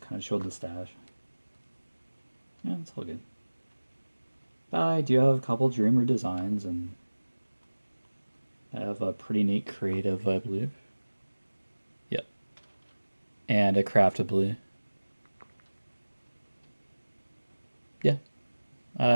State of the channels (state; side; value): inverted; both; correlation -1.00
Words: kind of showed the stash. Yeah, it's all good. I do have a couple Dreamer designs, and I have a pretty neat creative, I believe. Yep. And a craftably. Yeah.